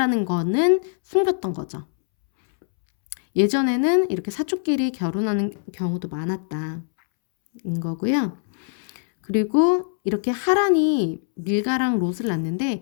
거는 숨겼던 거죠. 예전에는 이렇게 사촌끼리 결혼하는 경우도 많았다인 거고요. 그리고 이렇게 하란이 밀가랑 롯을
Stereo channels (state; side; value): silent; right; 64 dB below the other